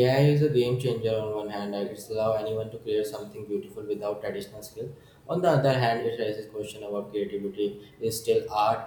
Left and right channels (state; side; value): identical; both; correlation 1.00